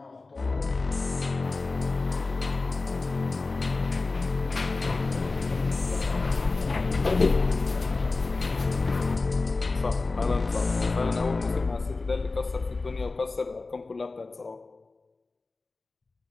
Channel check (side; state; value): right; quieter; 3.6 dB